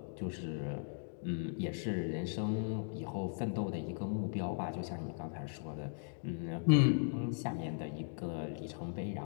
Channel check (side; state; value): right; silent; digital silence